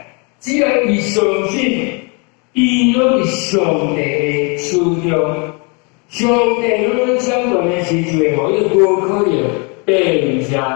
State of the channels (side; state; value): right; quieter; 32.9 dB